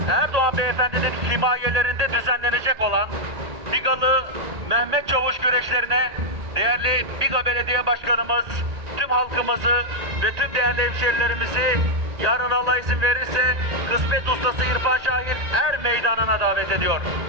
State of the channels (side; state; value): left; late; 1.8 ms